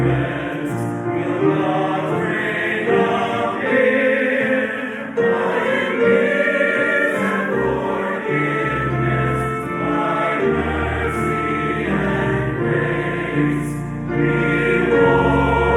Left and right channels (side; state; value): both; identical; correlation 1.00